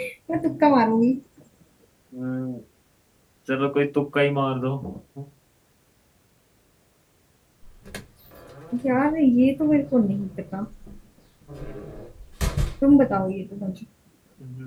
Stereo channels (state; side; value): identical; both; correlation 1.00